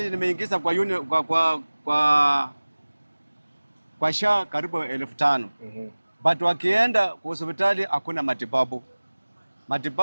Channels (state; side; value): inverted; both; correlation -1.00